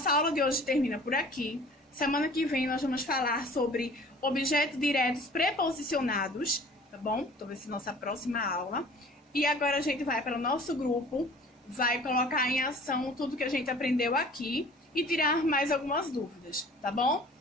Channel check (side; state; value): both; normal; correlation 0.48